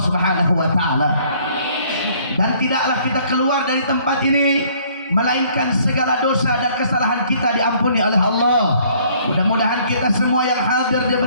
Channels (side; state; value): both; inverted; correlation -0.60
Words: Subhanahu wa taala. Dan tidaklah kita keluar dari tempat ini melainkan segala dosa dan kesalahan kita diampuni oleh Allah. Mudah-mudahan kita semua yang hadir